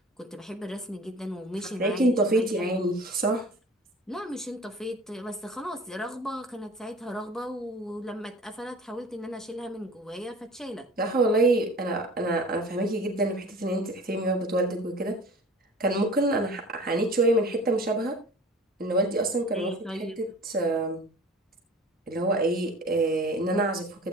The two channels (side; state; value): both; normal; correlation 0.42